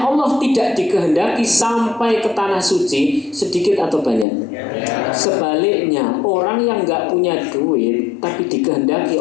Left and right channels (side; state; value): right; drops out; at 4.2 s